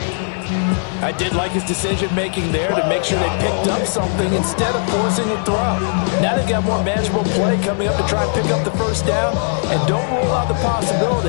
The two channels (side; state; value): right; silent; digital silence